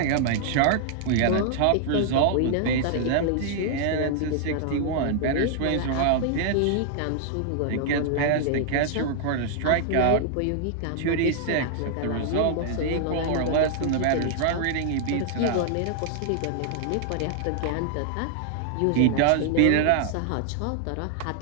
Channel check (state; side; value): different; both; correlation 0.00